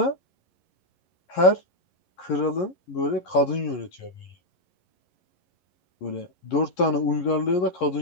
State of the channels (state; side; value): late; right; 11 ms